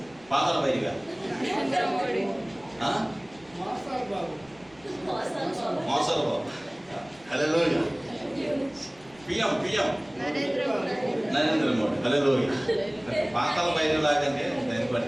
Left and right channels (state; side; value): noise; right; rumble, 27 dB below the sound